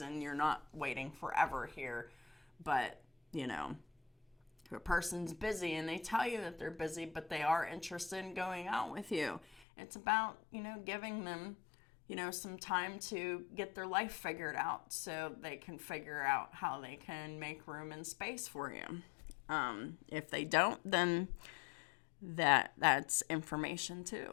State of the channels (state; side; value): drops out; right; at 9.7 s